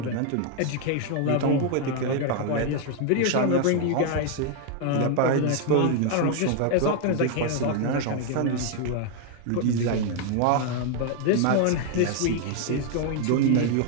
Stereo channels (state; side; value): different; both; correlation 0.00